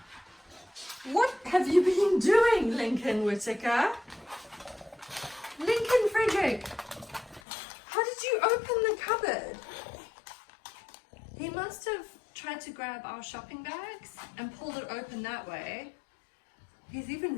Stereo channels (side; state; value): right; drops out; at 7.4 s